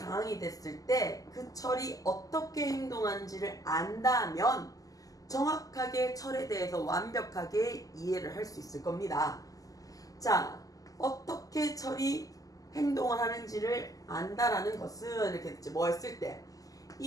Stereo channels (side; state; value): right; late; 0.17 ms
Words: 됐을 때 그 철이 어떻게 행동하는지를 안다면 정확하게 철에 대해서 완벽하게 이해를 할 수 있을 겁니다. 자, 어떻게 철이 행동을 하는지를 안다라는 것은 이렇게 됐지. 뭐 했을 때?